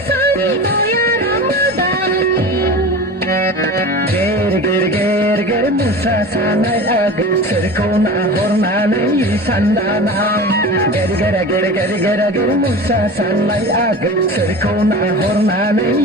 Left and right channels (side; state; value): both; normal; correlation 0.33